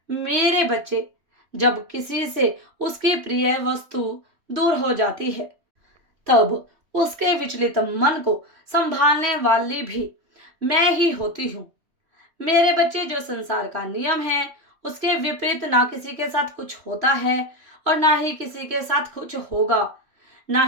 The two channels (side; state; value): left; late; 3.1 ms